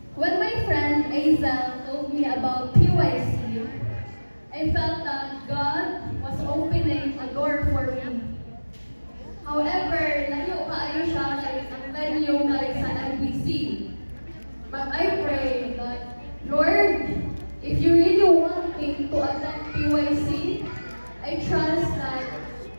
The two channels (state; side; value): inverted; both; correlation -1.00